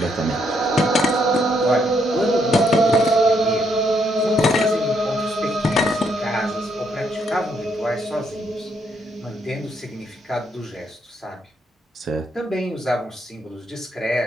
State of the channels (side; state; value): both; normal; correlation 0.74